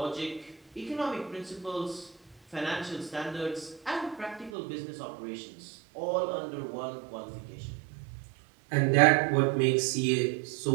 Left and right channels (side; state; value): left; drops out; at 4.5 s